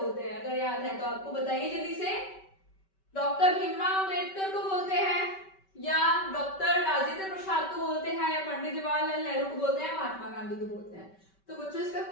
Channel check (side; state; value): right; late; 5.2 ms